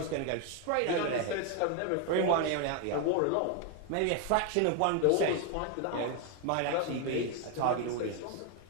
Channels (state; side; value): different; both; correlation 0.01